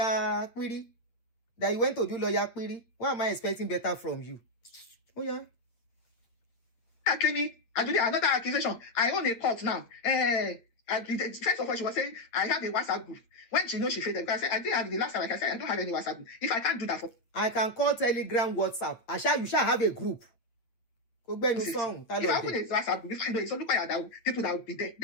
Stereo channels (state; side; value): late; right; 8.8 ms